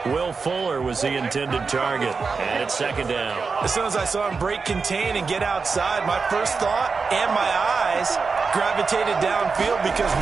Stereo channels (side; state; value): left; quieter; 4.8 dB